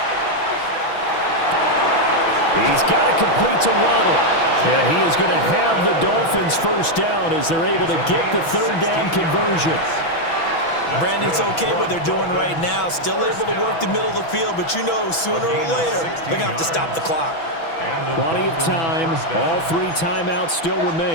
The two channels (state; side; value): late; right; 6.1 ms